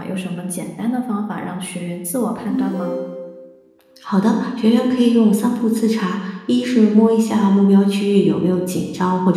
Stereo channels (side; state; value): both; identical; correlation 1.00